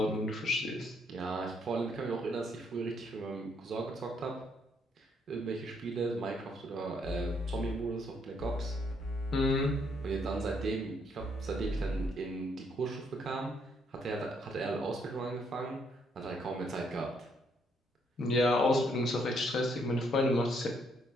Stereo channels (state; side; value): normal; both; correlation 0.71